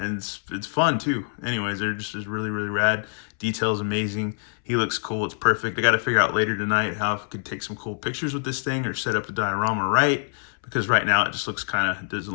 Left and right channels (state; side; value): silent; right; 62 dB below the other